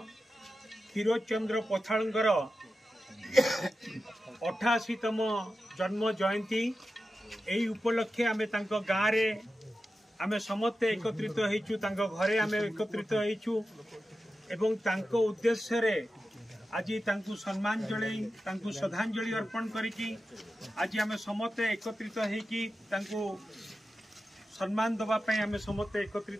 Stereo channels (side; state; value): both; normal; correlation 0.92